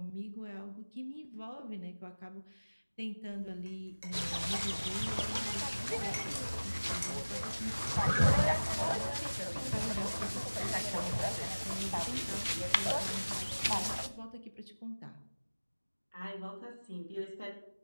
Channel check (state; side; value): inverted; both; correlation -1.00